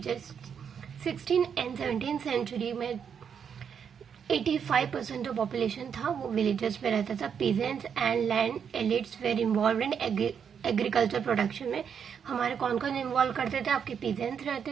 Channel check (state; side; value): quieter; left; 7.4 dB